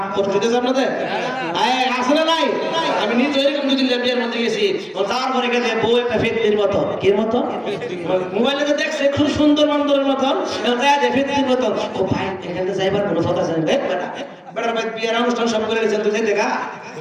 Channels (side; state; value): both; identical; correlation 1.00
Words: কষ্ট দিতেছে আপনাদের? আছে না নাই? আমি নিজে এরকম দুদিন বিয়ের মধ্যে গেছি, তারপরে গেছে বউ একটা ফেতনির মতো, কি মতো মোবাইলে দেখছে খুব সুন্দর বান্দরের মতন, ফেতনির মতন। ও ভাই এখানে যাইবার কোনো কথা জানি বেটা বেটার ভাই বিয়ের অনুষ্ঠান সব করে গেছেন, তুই দেখা